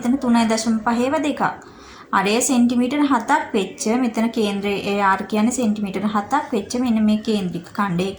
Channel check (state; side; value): identical; both; correlation 1.00